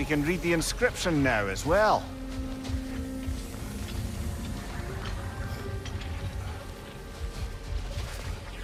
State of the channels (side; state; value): both; identical; correlation 1.00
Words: can read the inscription now as well.